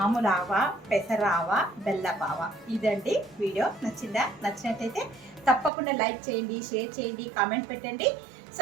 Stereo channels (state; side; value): drops out; left; at 5.7 s